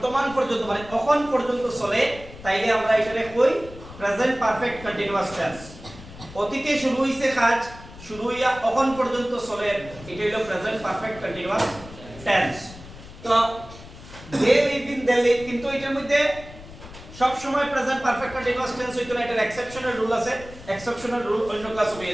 পর্যন্ত মানে এখন পর্যন্ত চলে তাইলে আমরা এটারে কই প্রেজেন্ট পারফেক্ট কন্টিনিউয়াস টেন্স। অতীতে শুরু হইছে কাজ, শুরু হইয়া এখন পর্যন্ত চলে, এটা হলো প্রেজেন্ট পারফেক্ট কন্টিনিউয়াস টেন্স। তো দে লিভ ইন দিল্লি, কিন্তু এটার মধ্যে সব সময় প্রেজেন্ট পারফেক্ট কন্টিনিউয়াস টেন্স হইতো না, এটার এক্সেপশনাল রুল আছে। এক্সেপশনাল রুল অন্য ক্লাসে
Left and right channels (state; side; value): noise; left; rumble, 17 dB below the sound